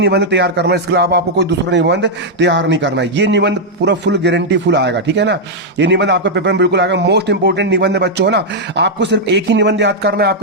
तैयार करना है। इसके अलावा आपको कोई दूसरा निबंध तैयार नहीं करना है। ये निबंध पूरा फुल गारंटी फुल आएगा, ठीक है ना। ये निबंध आपके पेपर में बिल्कुल आएगा। मोस्ट इंपोर्टेंट निबंध है बच्चों, है ना। आपको सिर्फ एक ही निबंध याद करना है,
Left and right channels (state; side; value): normal; both; correlation -0.03